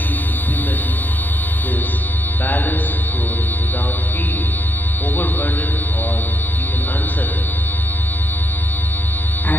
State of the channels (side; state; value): right; late; 0.089 ms